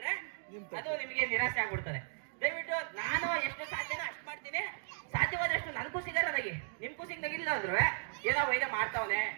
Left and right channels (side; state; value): left; silent; digital silence